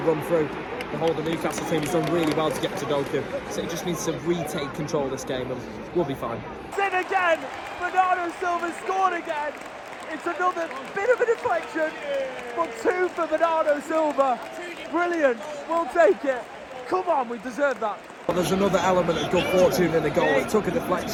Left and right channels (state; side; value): identical; both; correlation 1.00